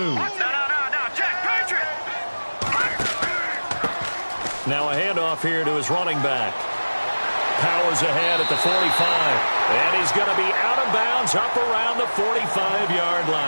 Now a handoff here to his running back. Powers ahead at the 45. And he's going to be out of bounds up around the 45-yard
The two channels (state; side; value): inverted; both; correlation -1.00